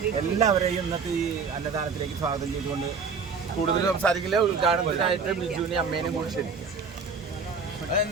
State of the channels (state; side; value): quieter; left; 5.2 dB